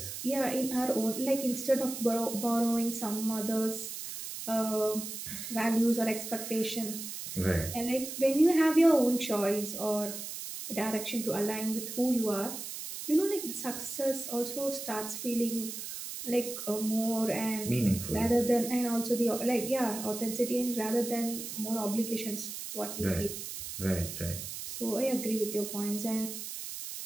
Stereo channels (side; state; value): right; noise; hiss, 8 dB below the sound